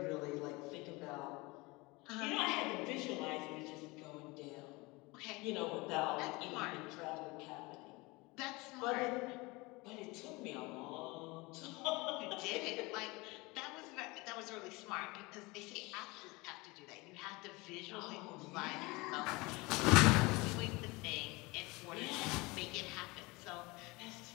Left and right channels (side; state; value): right; quieter; 24.1 dB